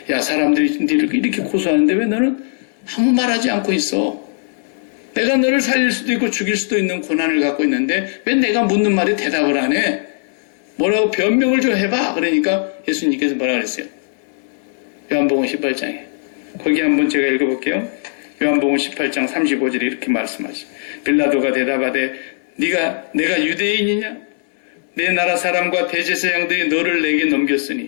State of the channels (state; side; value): silent; right; digital silence